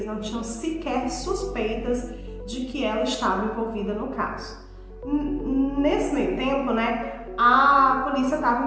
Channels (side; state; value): both; identical; correlation 1.00